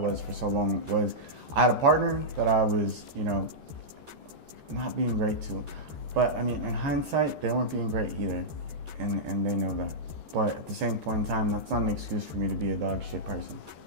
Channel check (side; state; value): left; late; 13 ms